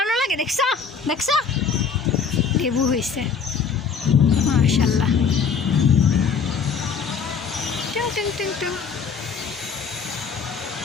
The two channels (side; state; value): right; quieter; 5.9 dB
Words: লাগে, দেখছো লেবু হয়েছে মাশাআল্লাহ। টুং টুং টুং টুং।